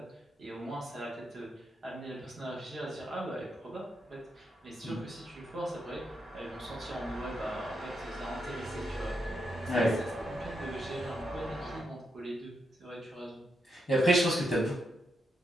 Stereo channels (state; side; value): normal; both; correlation 0.82